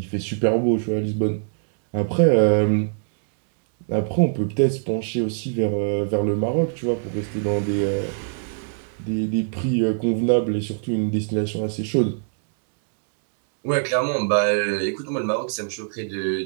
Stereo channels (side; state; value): left; silent; digital silence